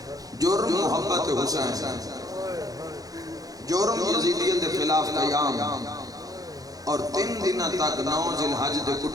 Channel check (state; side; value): late; left; 0.17 ms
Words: جرم محبت حسین جرم یزیدیت کے خلاف قیام اور 3 دن تک 9 ذی الحج دے